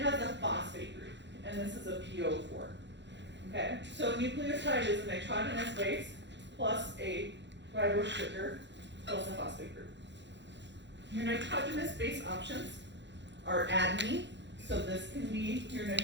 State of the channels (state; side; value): late; left; 0.52 ms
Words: a phosphate group, and this is a PO4, okay? So nucleotide is a nitrogenous base plus a ribose sugar plus a phosphate group. Your nitrogenous base options are adenine, so this can be your